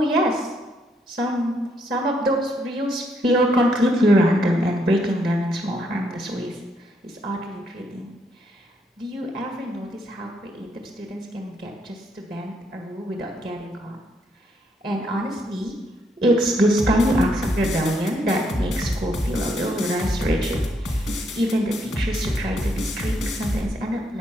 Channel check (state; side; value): normal; both; correlation 0.74